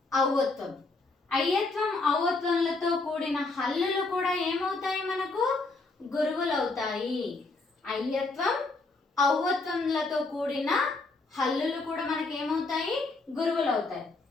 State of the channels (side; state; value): right; quieter; 3.5 dB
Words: ఔవత్వం. అయ్యత్వం, ఔవత్వంలతో కూడిన హల్లులు కూడా ఏమవుతాయి, మనకు గురువులు అవుతాయి. అయ్యత్వం, ఔవత్వంలతో కూడిన హల్లులు కూడా మనకి ఏమవుతాయి, గురువులు అవుతాయి.